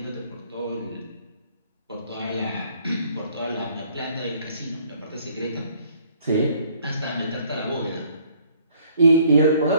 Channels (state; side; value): inverted; both; correlation -0.61